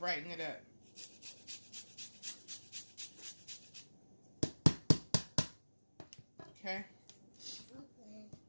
it up. Okay.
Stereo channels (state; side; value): inverted; both; correlation -1.00